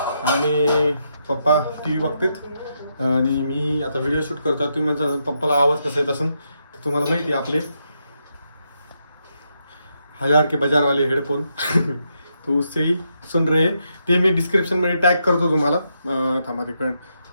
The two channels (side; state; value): both; inverted; correlation -0.81